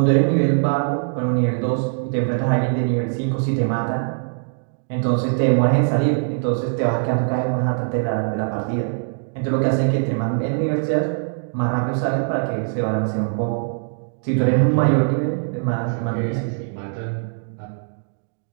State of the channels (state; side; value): silent; left; digital silence